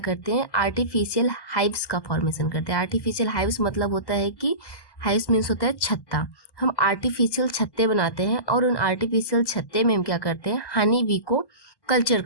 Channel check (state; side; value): late; right; 1.1 ms